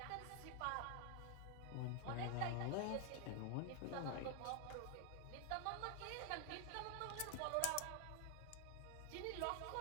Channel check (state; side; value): different; both; correlation 0.00